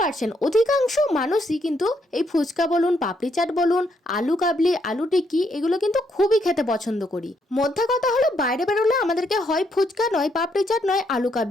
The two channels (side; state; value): both; normal; correlation 0.75